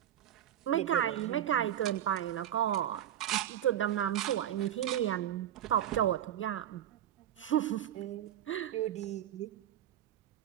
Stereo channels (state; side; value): quieter; left; 11.0 dB